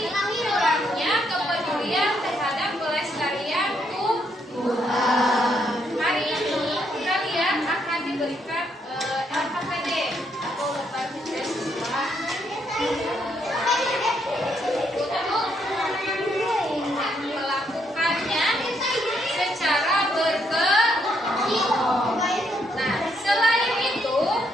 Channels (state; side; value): normal; both; correlation 0.74